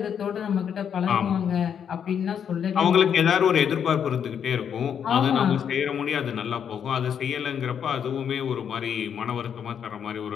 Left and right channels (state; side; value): quieter; right; 8.1 dB